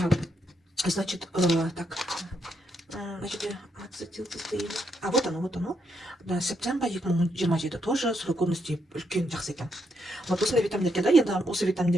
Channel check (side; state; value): both; normal; correlation 0.78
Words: значит, так, значит, ацетилцистеин. А вот оно, вот оно. Да, септембр 2027 тоже срок годности үлкен жақсы екен. Вот осындай витаминдерге да, енді осы